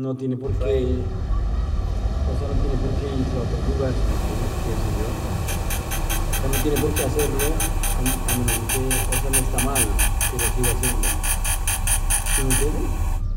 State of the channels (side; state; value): both; identical; correlation 1.00